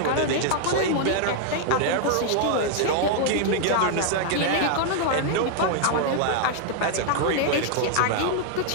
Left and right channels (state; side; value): different; both; correlation 0.00